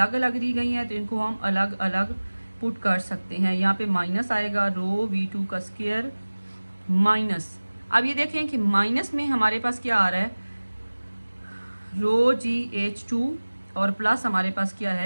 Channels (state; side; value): inverted; both; correlation -1.00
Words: अलग दी गई हैं तो इनको हम अलग अलग पुट कर सकते हैं। यहाँ पे माइनस आएगा रो V2 का स्क्वायर माइनस। अब ये देखें कि माइनस में हमारे पास क्या आ रहा है? रो GH2 और प्लस हमारे पास क्या